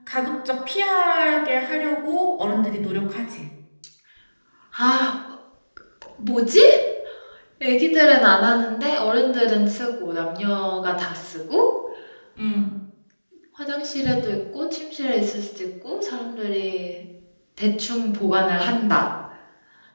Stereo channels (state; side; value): inverted; both; correlation -1.00